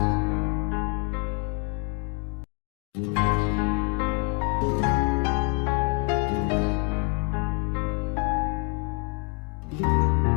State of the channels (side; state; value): right; quieter; 33.6 dB